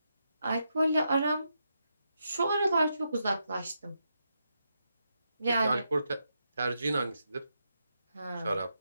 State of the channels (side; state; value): both; inverted; correlation -0.83